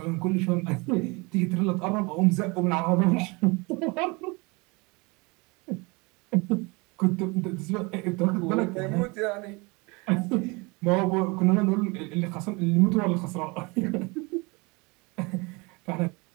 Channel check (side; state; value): left; quieter; 27.2 dB